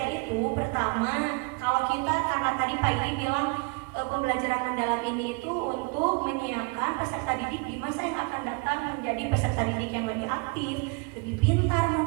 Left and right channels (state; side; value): quieter; left; 30.2 dB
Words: itu pertama, kalau kita, karena tadi Pak Idi bilang pembelajaran mendalam ini itu untuk menyiapkan peserta didik di masa yang akan datang menjadi peserta didik yang lebih aktif, lebih pintar